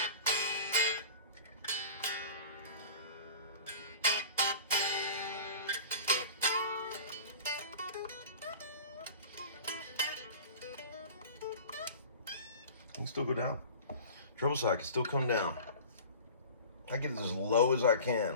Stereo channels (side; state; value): both; inverted; correlation -0.39